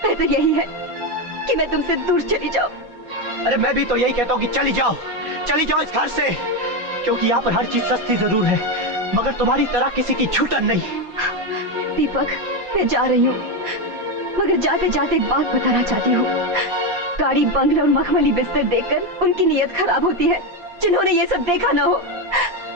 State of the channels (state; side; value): late; left; 5.7 ms